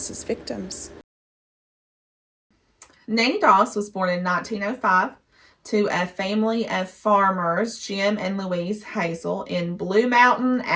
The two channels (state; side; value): identical; both; correlation 1.00